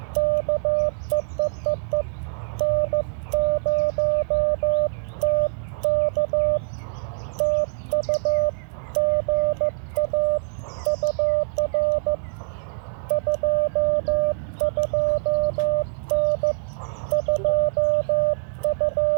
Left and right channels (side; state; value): left; silent; digital silence